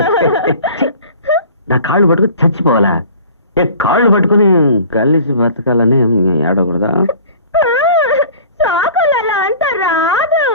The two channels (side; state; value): both; inverted; correlation -0.45